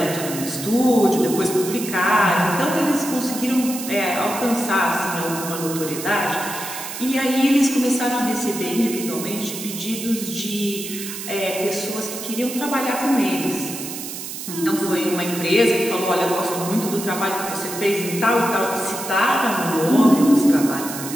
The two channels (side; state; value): right; noise; hiss, 8 dB below the sound